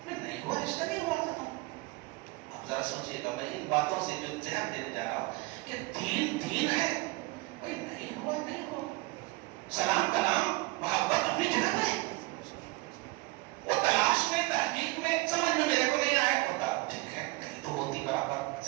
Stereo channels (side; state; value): left; quieter; 22.5 dB